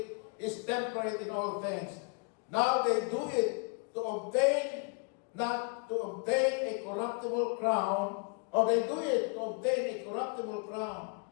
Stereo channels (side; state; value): right; quieter; 38.3 dB